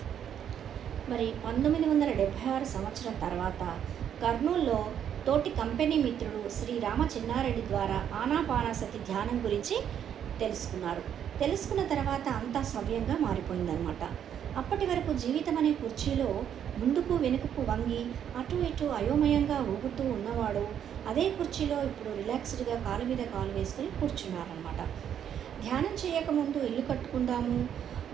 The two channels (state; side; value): quieter; left; 9.2 dB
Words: మరి 1976 సంవత్సరం తర్వాత కర్నూల్లో తోటి కంపెనీ మిత్రుడు శ్రీ రామ చిన్నారెడ్డి ద్వారా ఆనాపానసతి ధ్యానం గురించి తెలుసుకున్న తర్వాత అంతా సవ్యంగా మారిపోయిందనమాట. అప్పటి వరకు జీవితం అనే కుర్చీలో ముందుకు వెనుకకు వంగి అటు ఇటు అయోమయంగా ఊగుతూ ఉన్నవాడు అదే కుర్చీలో ఇప్పుడు రిలాక్స్డ్గా కాలు మీద కాలు వేసుకుని కూర్చున్నారనమాట. ధ్యానం చేయకముందు ఇల్లు కట్టుకుందాము,